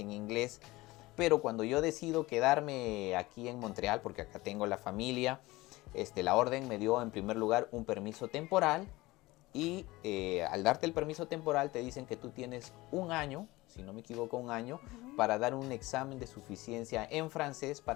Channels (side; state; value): right; quieter; 20.2 dB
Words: inglés. Pero cuando yo decido quedarme aquí en Montreal, porque acá tengo la familia, la orden me dio en primer lugar un permiso temporal y al darte el permiso temporal te dicen que tú tienes 1 año, si no me equivoco 1 año, para dar un examen de suficiencia en francés